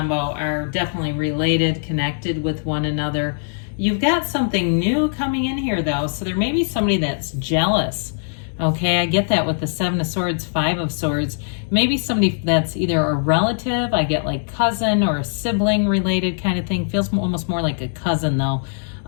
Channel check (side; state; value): right; silent; digital silence